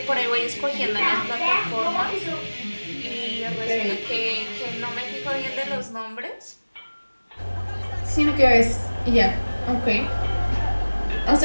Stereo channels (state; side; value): inverted; both; correlation -1.00